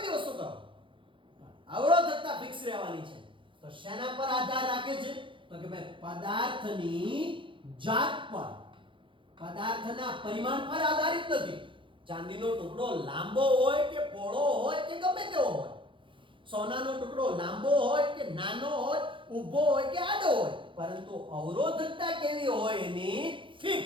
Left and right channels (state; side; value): late; left; 0.24 ms